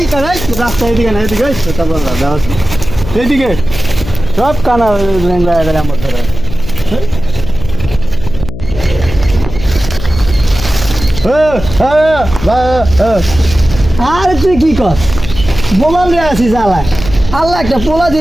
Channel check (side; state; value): left; noise; hum, 10 dB below the sound